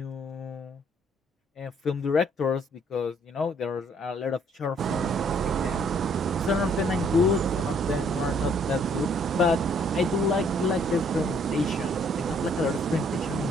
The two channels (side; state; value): both; normal; correlation 0.64